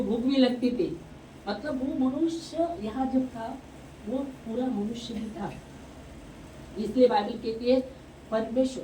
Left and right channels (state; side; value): identical; both; correlation 1.00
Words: भूख भी लगती थी। मतलब वो मनुष्य यहाँ जब था वो पूरा मनुष्य ही था। इसलिए बाइबल कहती है